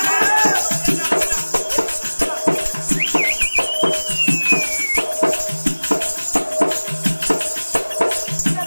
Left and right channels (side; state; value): both; inverted; correlation -1.00